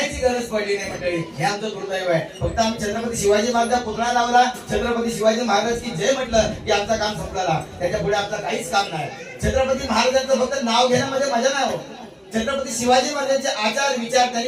गरज पडली नाही मंडळी, हे आमचं दुर्दैव आहे. फक्त आम्ही छत्रपती शिवाजी महाराज पुतळा लावला, छत्रपती शिवाजी महाराज की जय म्हटलं की आमचं काम संपलं. त्याच्या पुढे आमचं काहीच काम नाही. छत्रपती महाराजांचं फक्त नाव घेण्यामध्ये मजा नाही हो. छत्रपती शिवाजी महाराजांचे आचार विचार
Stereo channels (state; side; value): identical; both; correlation 1.00